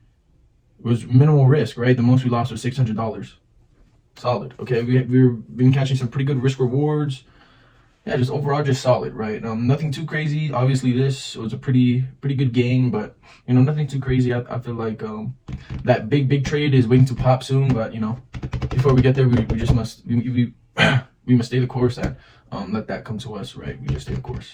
was minimal risk, right? The most we lost was $600. Solid. Okay, we've been catching some pretty good risk rewards. Yeah, just overall just solid, right? Nothing too crazy. Obviously, this was a pretty good game, but nothing too crazy. I feel like that big trade is waiting to pop soon, but before we get there, we just must we must stay the course and let that come to us, right? We just stay the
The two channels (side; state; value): both; identical; correlation 1.00